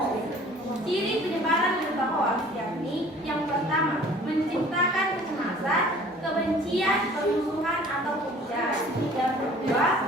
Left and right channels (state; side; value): normal; both; correlation 0.50